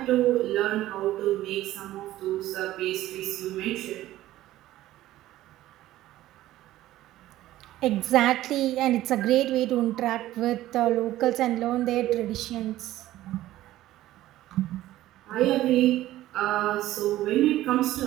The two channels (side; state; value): left; quieter; 14.9 dB